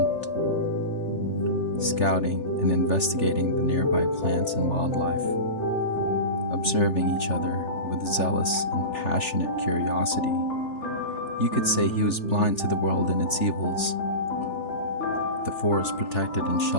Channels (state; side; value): late; right; 3.4 ms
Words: scouting and investigating the nearby plants and wildlife, observing each other with zealous and passionate curiosity. You could say he was blind to the world and its evils. The forest protected and